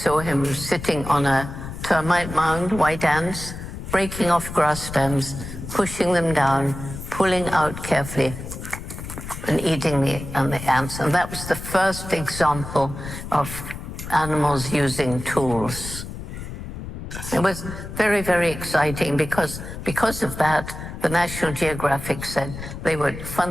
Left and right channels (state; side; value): noise; left; rumble, 9 dB below the sound